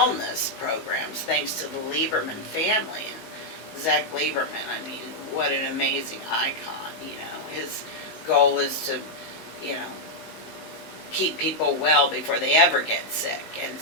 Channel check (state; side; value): late; right; 19 ms